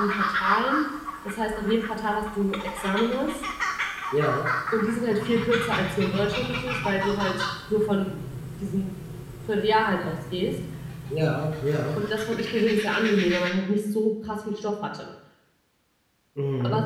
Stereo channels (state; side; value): identical; both; correlation 1.00